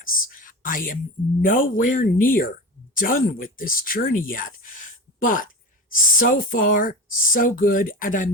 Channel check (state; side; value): normal; both; correlation 0.28